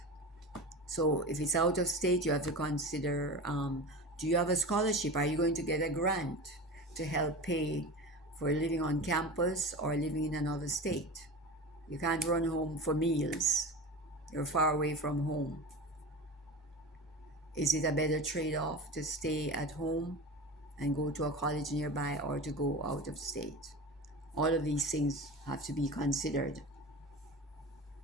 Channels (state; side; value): normal; both; correlation 0.30